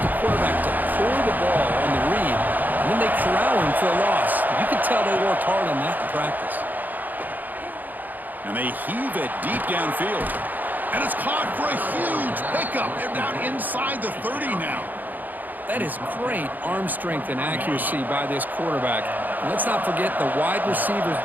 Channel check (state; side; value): late; left; 0.084 ms